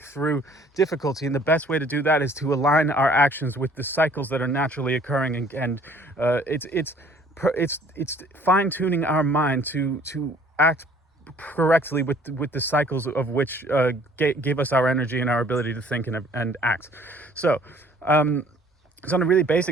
through difficulty. And the best way to do that is to align our actions with the cycles that are naturally occurring, and it's fine-tuning our mind to act correctly with the cycles of which give us our energy and our ability to think and act. So it's on a really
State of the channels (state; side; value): normal; both; correlation 0.56